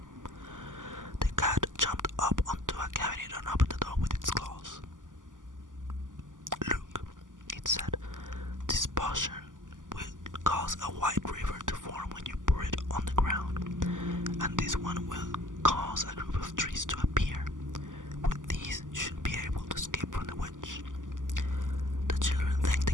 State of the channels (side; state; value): left; late; 0.88 ms